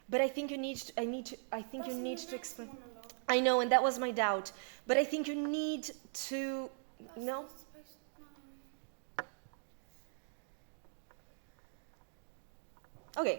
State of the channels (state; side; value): silent; left; digital silence